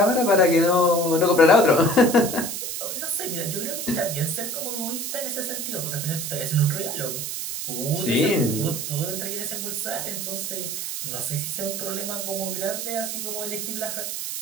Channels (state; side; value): noise; right; hiss, 4 dB below the sound